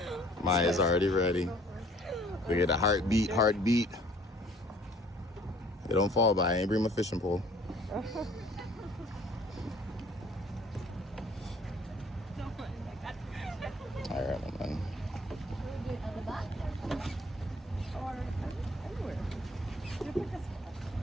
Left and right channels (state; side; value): normal; both; correlation 0.56